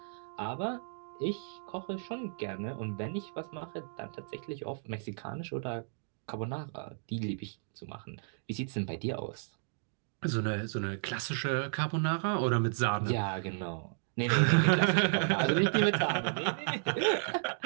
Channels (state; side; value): silent; left; digital silence